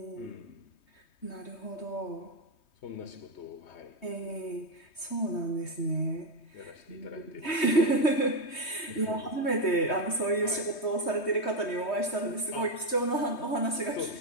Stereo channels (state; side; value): late; right; 3.2 ms